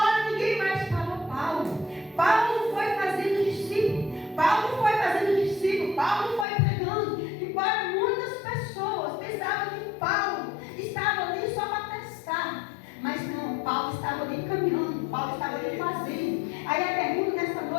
ninguém mais parou Paulo. Paulo foi fazendo discípulo. Paulo foi fazendo discípulo. Paulo foi pregando. Embora muitas pessoas pensavam que Paulo estava ali só para testar. Mas não, Paulo estava ali caminhando. Paulo estava ali fazendo. Aí a pergunta nessa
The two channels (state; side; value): drops out; right; at 6.5 s